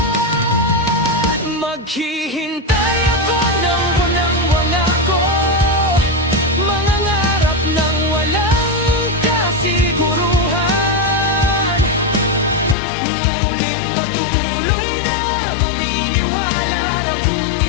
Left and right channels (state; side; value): drops out; right; at 12.8 s